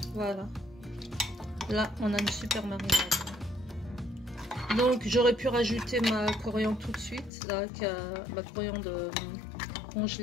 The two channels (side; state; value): right; drops out; at 7.3 s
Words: Voilà. Là, on a une super marinade. Donc, j'aurais pu rajouter ma coriandre tout de suite, là, ma coriandre